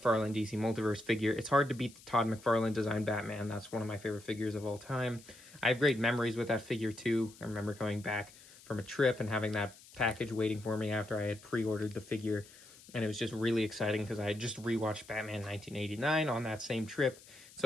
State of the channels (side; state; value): left; noise; hiss, 22 dB below the sound